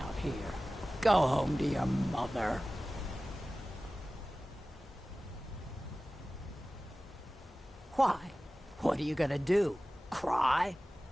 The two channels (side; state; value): both; normal; correlation 0.97